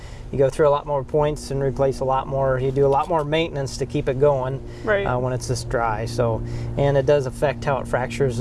You go through a lot more points and replace a lot more. You do a lot more maintenance to keep it going when it's this dry. So, and it does affect how it fractures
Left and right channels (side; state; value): both; identical; correlation 1.00